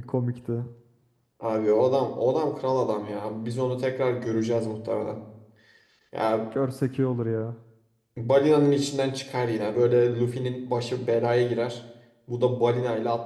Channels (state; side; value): identical; both; correlation 1.00